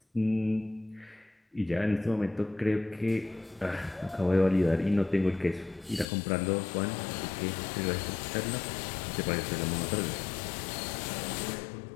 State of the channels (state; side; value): drops out; right; at 6.1 s